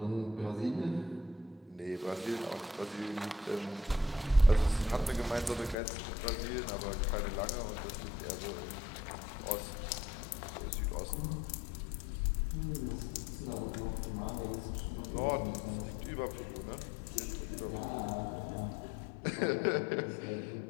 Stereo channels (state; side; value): drops out; right; at 5.8 s